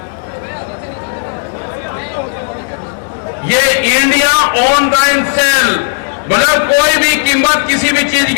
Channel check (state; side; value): silent; right; digital silence